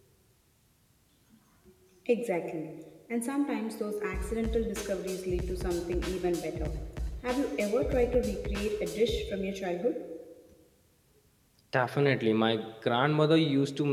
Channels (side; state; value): both; identical; correlation 1.00